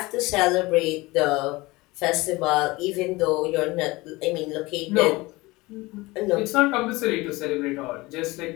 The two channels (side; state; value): right; quieter; 21.7 dB